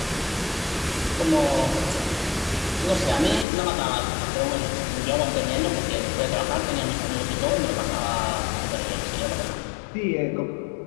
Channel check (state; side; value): drops out; right; at 3.5 s